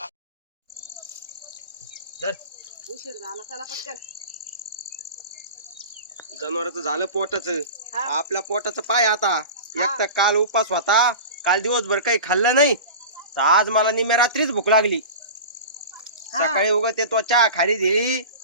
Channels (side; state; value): both; inverted; correlation -0.32